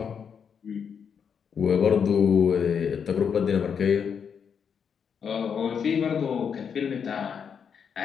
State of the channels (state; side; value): quieter; right; 7.0 dB